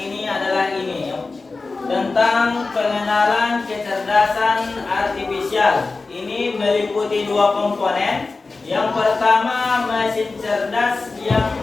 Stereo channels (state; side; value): quieter; right; 3.8 dB